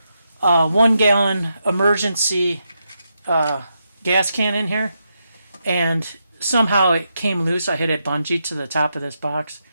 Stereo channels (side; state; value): both; inverted; correlation -0.84